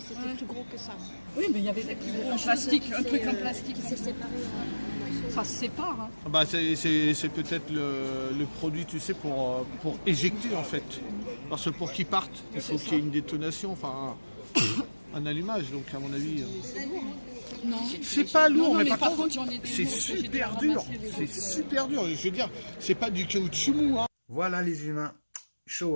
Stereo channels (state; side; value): inverted; both; correlation -1.00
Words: c'était plus gros que ça. Oui, mais il y avait un plastique, un truc en plastique. Qui s'est séparé. Ça se sépare. Hein. Ah bah c'est peut-être le produit, tu sais, pour éjecter en fait. Parce que pour qu'il parte, il faut qu'il y ait une détonation, enfin un allumage. Donc à mon avis. Non. C'est pas lourd, Non, mais par contre, j'en ai des c'est lourds que j'ai dû super dur. ramasser les C'est autres. super dur. Je veux dire, c'est pas du caoutchouc mou. Hein. Voilà les humains,